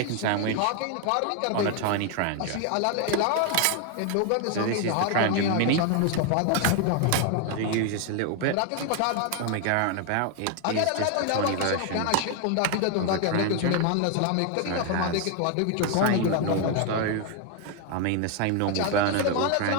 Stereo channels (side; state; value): both; different; correlation 0.01